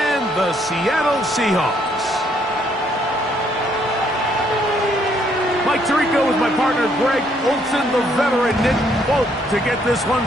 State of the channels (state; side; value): normal; both; correlation 0.69